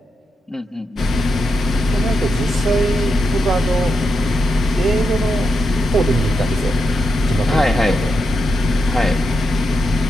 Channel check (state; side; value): normal; both; correlation 0.85